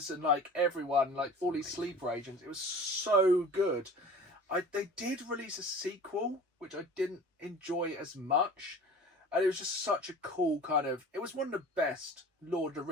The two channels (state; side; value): normal; both; correlation 0.41